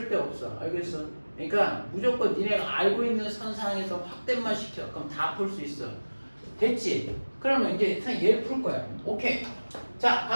알겠어? 그러니까 무조건 니네가 알고 있는 선상에서 확대만 시켜. 그럼 다 풀 수 있어. 됐지? 그러면 이제 얘를 풀 거야. 오케이. 자,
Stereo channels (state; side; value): inverted; both; correlation -1.00